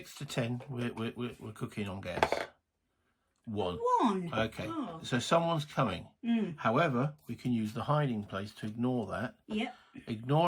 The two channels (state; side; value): identical; both; correlation 1.00